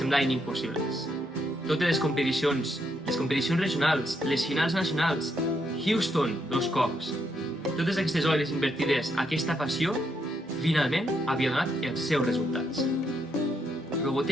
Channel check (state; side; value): normal; both; correlation 0.77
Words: impossibles. Totes les competicions regionals, les finals nacionals, Houston 2 cops, totes aquestes hores invertides a aquesta passió, finalment havia donat els seus resultats.